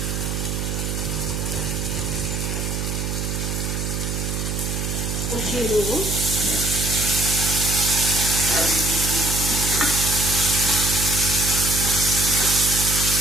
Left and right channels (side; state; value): right; noise; hum, 2 dB below the sound